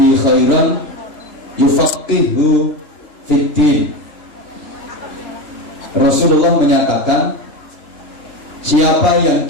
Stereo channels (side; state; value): right; late; 3.0 ms